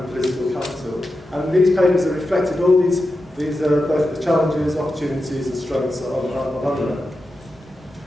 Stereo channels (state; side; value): normal; both; correlation 0.90